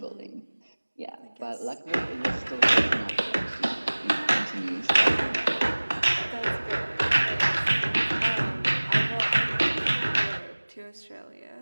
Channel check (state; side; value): inverted; both; correlation -1.00